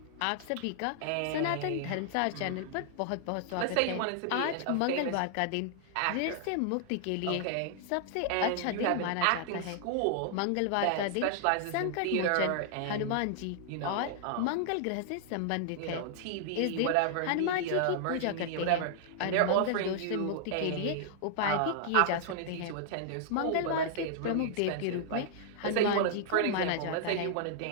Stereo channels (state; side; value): different; both; correlation -0.01